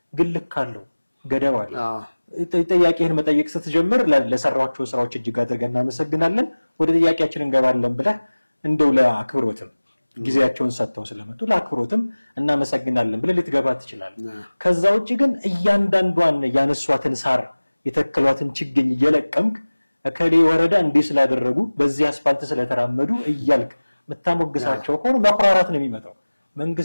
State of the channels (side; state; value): both; inverted; correlation -1.00